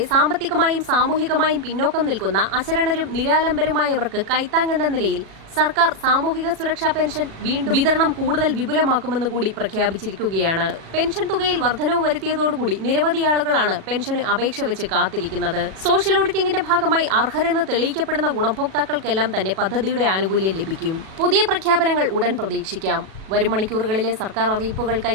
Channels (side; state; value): left; late; 37 ms